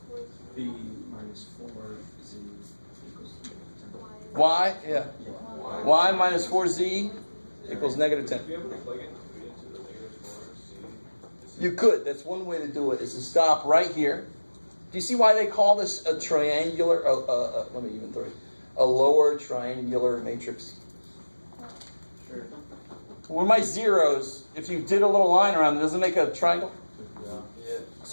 B minus 4Z equals 10. Y? Yeah. Y minus 4Z equals negative 10. You could. That's one way to do it, is to stop right here. Do you see why they call this a triangular, let me even throw it, a lower triangular matrix? Sure. Where my zeros, if you did a little line around it, doesn't it make a triangle? Yeah.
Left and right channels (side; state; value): both; inverted; correlation -1.00